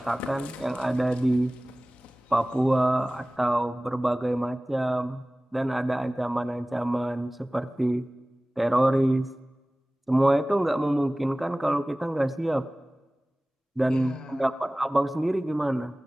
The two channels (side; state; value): both; normal; correlation 0.98